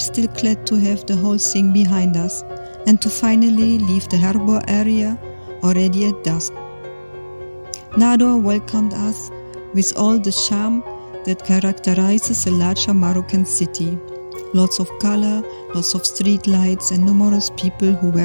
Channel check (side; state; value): both; inverted; correlation -1.00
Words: glad to have the whole thing behind us and to finally leave the harbor area already at dusk. Nador welcomed us with all the charm that characterizes a larger Moroccan city. Lots of color, lots of street lights and numerous people who